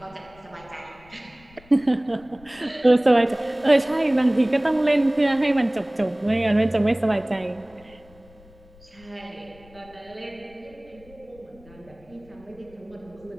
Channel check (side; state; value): left; noise; rumble, 25 dB below the sound